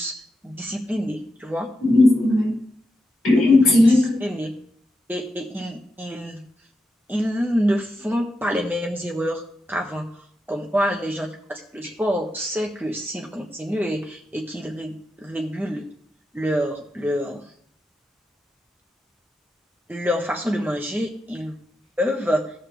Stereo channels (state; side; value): normal; both; correlation 0.87